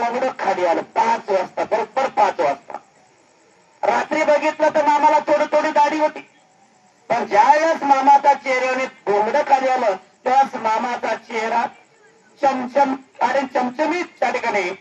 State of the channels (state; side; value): identical; both; correlation 1.00